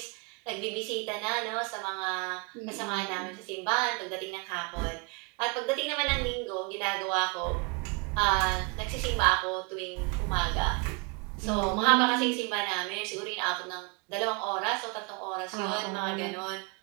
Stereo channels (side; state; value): left; quieter; 30.2 dB